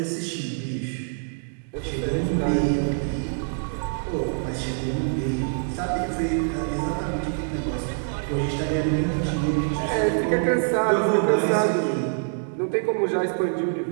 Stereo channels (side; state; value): left; silent; digital silence